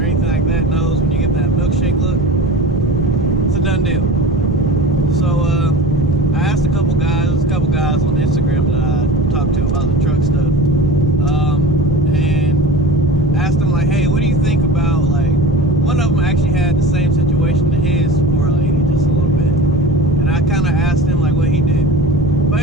like that knows when you get that milkshake look, it's a done deal. So I asked a couple guys on Instagram that I talked to about the truck stuff, and asked them like, hey, what do you think about, like, one of them actually had the same situation to his 4L80 just a little bit, and I kind of asked him like what he did.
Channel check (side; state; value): both; normal; correlation 0.33